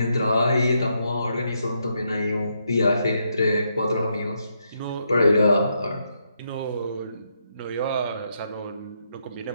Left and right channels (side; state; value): both; inverted; correlation -0.79